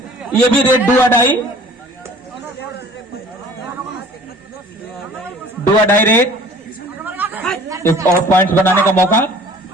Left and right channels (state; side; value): normal; both; correlation 0.49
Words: ये भी रेड डू अडाई रेड, एक और पॉइंट्स बनाने का मौका।